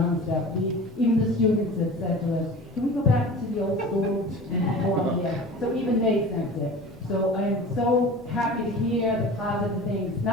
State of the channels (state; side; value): normal; both; correlation 0.37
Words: stuff. Even the students have said to us, can we go back to the old school and perform there? So even they sense it. So I'm so happy to hear the positive things,